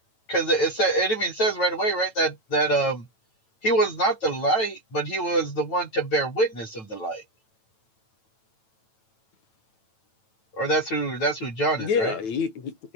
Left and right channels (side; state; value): right; late; 9.1 ms